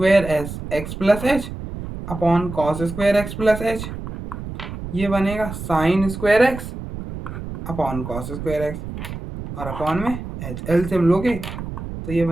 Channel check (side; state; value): right; noise; rumble, 9 dB below the sound